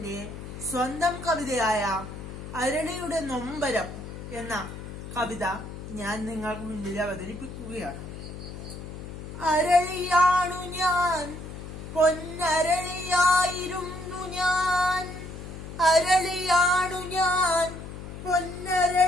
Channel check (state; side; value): noise; left; hum, 11 dB below the sound